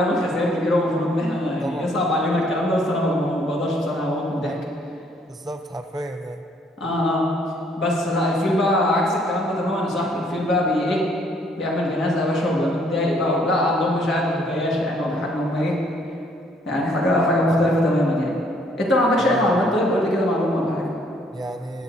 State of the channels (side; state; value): both; normal; correlation 0.65